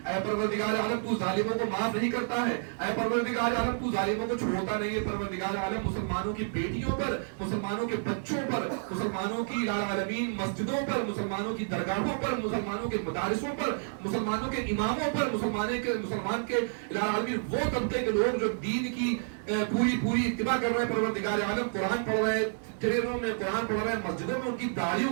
پروردگار عالم تو ظالموں کو معاف نہیں کرتا ہے، اے پروردگار عالم تو ظالموں کو چھوڑتا نہیں ہے. پروردگار عالم مسلمانوں کی بیٹیوں پر، مسلمانوں کے بچوں پر، مسلمانوں کی الہ العالمین مسجدوں پر، مسلمانوں کی درگاہوں پر، مسلمانوں کے مدارسوں پر، مسلمانوں کے اماموں پر، مسلمان کے الہ العالمین وہ طبقے کے لوگ جو دین کی پوری اتباع کر رہے ہیں پروردگار عالم، قرآن پڑھ رہے ہیں، ٹرینوں میں قرآن پڑھ رہے ہیں، مسجدوں میں ان کی داڑھیوں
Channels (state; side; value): silent; left; digital silence